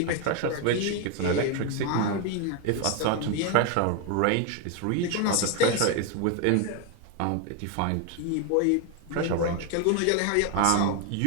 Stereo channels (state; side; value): different; both; correlation 0.01